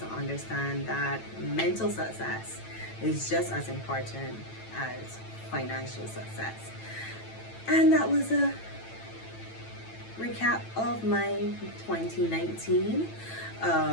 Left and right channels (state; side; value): late; right; 9.0 ms